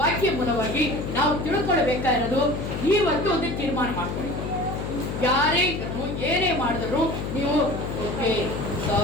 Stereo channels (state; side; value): noise; left; hum, 4 dB below the sound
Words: ಮೂಲವಾಗಿ ನಾವು ತಿಳ್ಕೊಳ್ಬೇಕಾಗಿರೋದು, ಇವತ್ತು ಒಂದು ತೀರ್ಮಾನ ಮಾಡ್ಕೊಳ್ಳಿ. ಯಾರೇ ಇದ್ರು ಏನೇ ಮಾಡಿದ್ರು ನೀವು ಓಕೆ